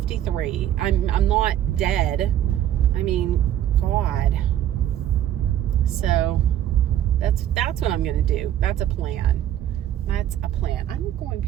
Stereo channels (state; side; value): quieter; left; 11.5 dB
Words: I'm not dead. I mean, God. So that's what I'm going to do. That's a plan. That's a plan. I'm going